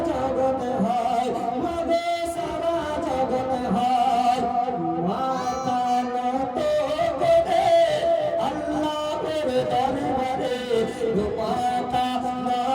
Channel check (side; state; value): both; identical; correlation 1.00